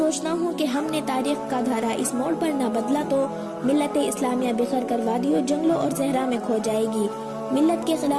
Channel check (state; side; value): identical; both; correlation 1.00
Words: ہوں کہ ہم نے تاریخ کا دھارا اس موڑ پر نہ بدلا تو ملت اسلامیہ بکھر کر وادیوں، جنگلوں اور صحرا میں کھو جائے گی۔ ملت کے